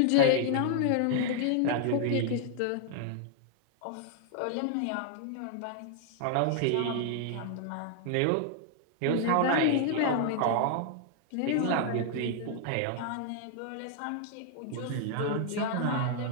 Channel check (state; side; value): different; both; correlation 0.00